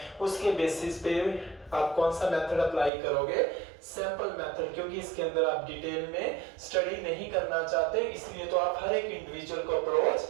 उसके बेसिस पे आप कौन सा मेथड अप्लाई करोगे, सैंपल मेथड, क्योंकि इसके अंदर आप डिटेल में स्टडी नहीं करना चाहते, इसलिए तो आप हर एक इंडिविजुअल को अप्रोच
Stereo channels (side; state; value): left; drops out; at 2.9 s